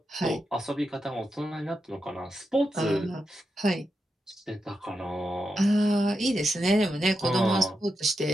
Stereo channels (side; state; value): both; normal; correlation 0.87